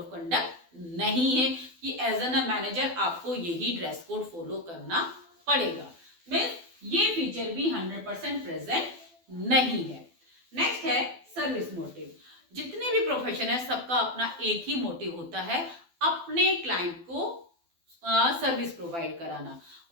कंडक्ट नहीं है कि एज एन मैनेजर आपको यही ड्रेस कोड फॉलो करना पड़ेगा। मीन्स ये फीचर भी 100% प्रेजेंट नहीं है। नेक्स्ट है सर्विस मोटिव। जितने भी प्रोफेशन है सबका अपना एक ही मोटिव होता है, अपने क्लाइंट को सर्विस प्रोवाइड कराना,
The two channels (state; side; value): late; left; 12 ms